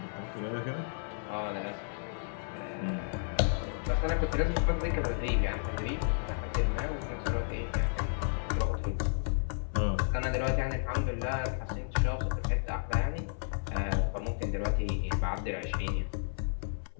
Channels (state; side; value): silent; right; 56 dB below the other